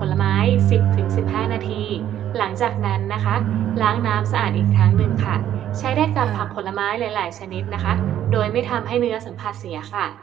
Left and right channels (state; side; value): quieter; left; 11.1 dB